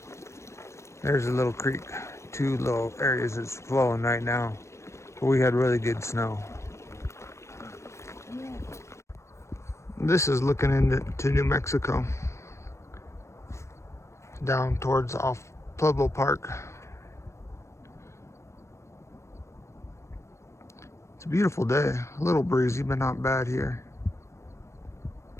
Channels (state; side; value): late; right; 0.13 ms